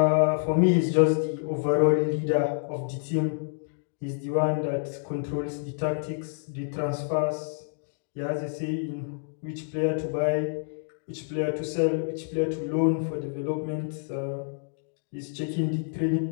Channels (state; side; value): silent; right; digital silence